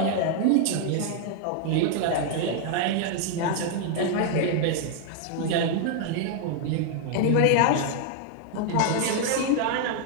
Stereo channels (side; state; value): both; different; correlation 0.00